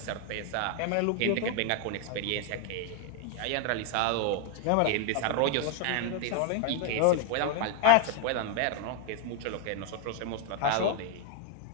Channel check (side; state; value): both; different; correlation 0.01